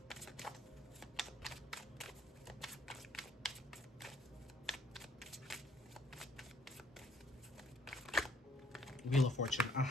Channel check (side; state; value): both; normal; correlation 0.65